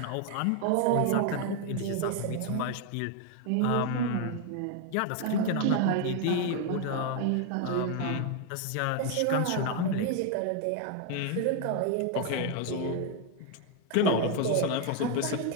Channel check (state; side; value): different; both; correlation 0.01